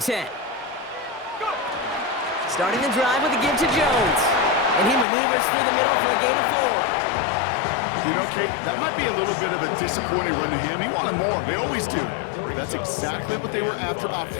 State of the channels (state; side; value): drops out; right; at 5.1 s